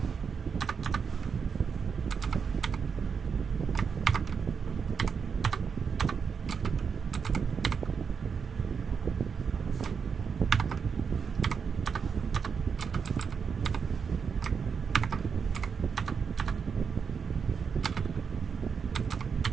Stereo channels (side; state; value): left; quieter; 6.2 dB